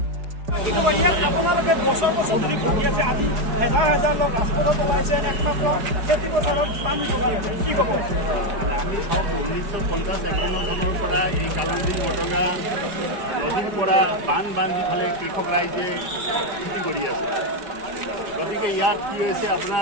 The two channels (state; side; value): late; left; 4.6 ms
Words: আপোনালোকে বছৰ বছৰ ধৰি ভাবি আছে, আজি হাজাৰ হাজাৰ লোক ৰাজপথত ওলাইছে একমাত্ৰ খেতি পথাৰত পানী যোগাৰ কি ক'ব? আমি চাওক 1950-51 চনৰ পৰা এই কালামদিন বটগা নদীৰ পৰা বান্ধি ফালে কৃষক ৰাইজে খেতি কৰি আছে। গতিকে ইয়াত কি হৈছে